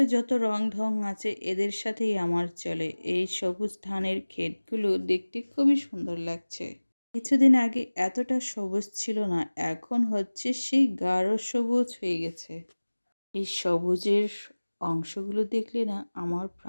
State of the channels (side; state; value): both; inverted; correlation -1.00